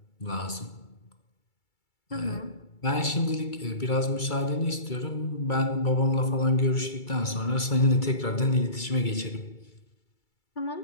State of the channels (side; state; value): right; late; 2.3 ms